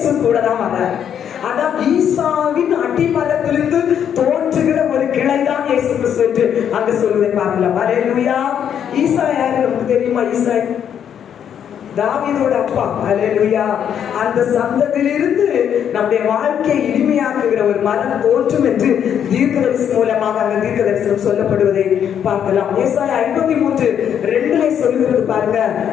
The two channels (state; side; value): quieter; right; 8.8 dB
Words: கூட தான் வர. அதான் ஈசாவின் அடிமரத்திலிருந்து தோன்றுகிற ஒரு கிளைதான் இயேசு கிறிஸ்து என்று அங்கு சொல்வதை பார்க்கலாம். அல்லேலூயா. ஈசா யாரு நமக்கு தெரியுமா? ஈசா தாவீதோட அப்பா. அல்லேலூயா. அந்த சந்ததியிலிருந்து நம்முடைய வாழ்க்கையை இனிமையாக்குகிற ஒரு மரம் தோன்றும் என்று தீர்க்கதரிசனம் மூலமாக அந்த தீர்க்கதரிசனம் சொல்லப்படுவதை பார்க்கலாம். ஏசாயா 53:2 சொல்லுகிறது பாருங்க,